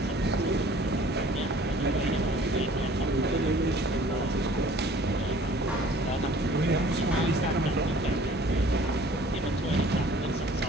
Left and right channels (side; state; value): both; normal; correlation 0.52